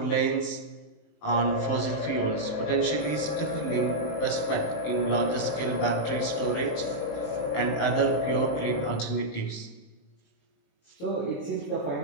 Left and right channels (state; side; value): late; right; 19 ms